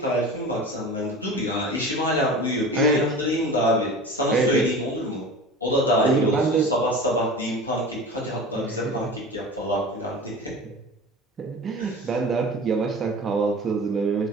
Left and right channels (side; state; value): both; normal; correlation 0.35